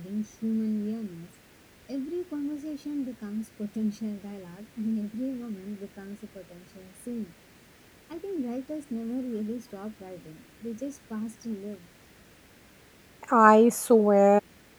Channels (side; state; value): both; identical; correlation 1.00